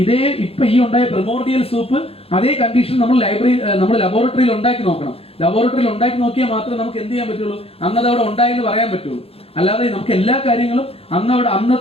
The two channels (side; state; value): right; late; 0.28 ms